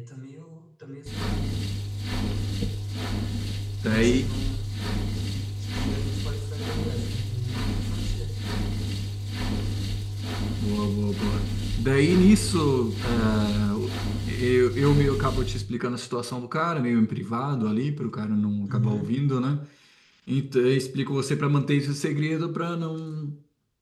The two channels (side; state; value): both; identical; correlation 1.00